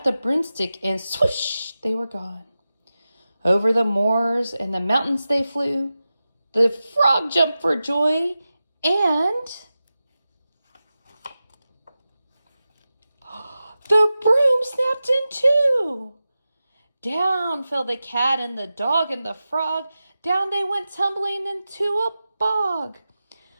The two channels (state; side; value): inverted; both; correlation -0.94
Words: the broomstick, and swoosh, they were gone. Over the moors and the mountains they flew. The frog jumped for joy, and the broom snapped in two. Down fell the cat and the dog and the frog. Down they went tumbling into a bog.